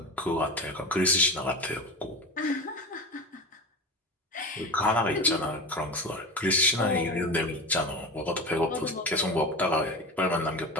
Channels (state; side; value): normal; both; correlation 0.27